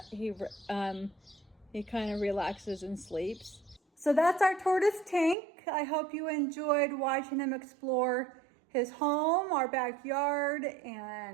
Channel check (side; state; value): left; drops out; at 5.4 s